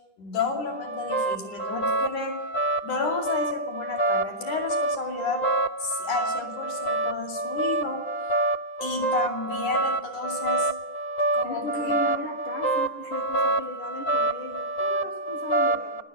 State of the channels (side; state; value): right; late; 9.9 ms